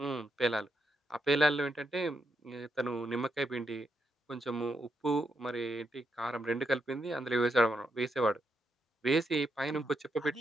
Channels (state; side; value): normal; both; correlation 0.81